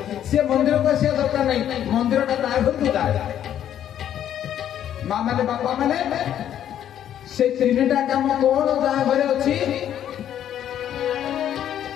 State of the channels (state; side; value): quieter; right; 10.5 dB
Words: से मंदिर को से दरकार नहीं, मंदिर ता घर को जाए। माँ माने बापा माने से तीनटा काम कौन जा घरे अच्छी?